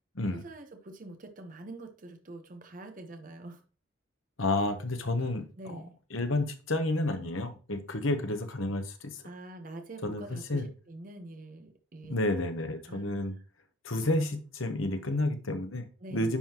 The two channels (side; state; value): both; normal; correlation 0.47